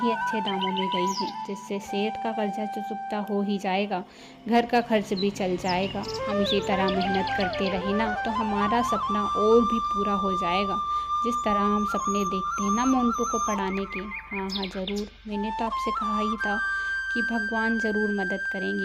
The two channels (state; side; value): identical; both; correlation 1.00